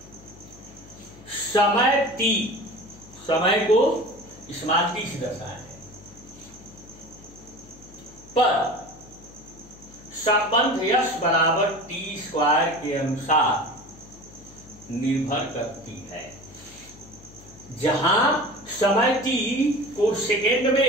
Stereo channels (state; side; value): noise; left; hum, 21 dB below the sound